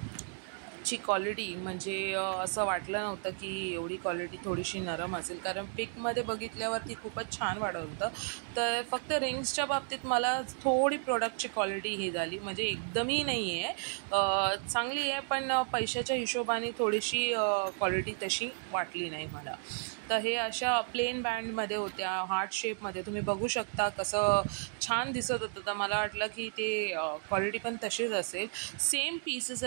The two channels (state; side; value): silent; left; 56 dB below the other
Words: ची क्वालिटी म्हणजे असं वाटलं नव्हतं की एवढी क्वालिटी थोडीशी नरम असेल, कारण पिकमध्ये बघितल्यावरती खूपच छान वाटत होतं। तर फक्त रिंग्सच्या बाबतीत मला थोडी प्रोडक्टची क्वालिटी ही झाली, म्हणजे एकदमही नाही आहे, चांगली आहे, पण पैशाच्या हिशोबाने थोडीशी क्वालिटी तशी वाटली नाही मला। तर हे अशा प्लेन बँडमध्ये होत्या, हार्ट शेपमध्ये, तुम्ही बघू शकता कसं छान दिसत होतं। तर मला वाटलं की ते क्वालिटी पण तशीच असेल। सेम पीसेस